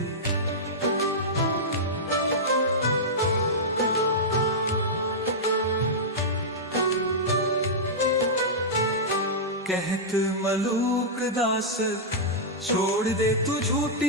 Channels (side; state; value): both; normal; correlation -0.10